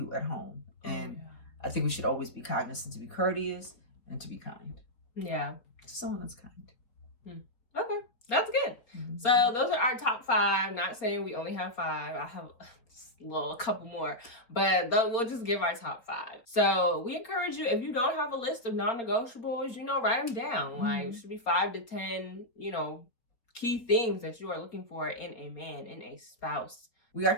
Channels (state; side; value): late; right; 4.5 ms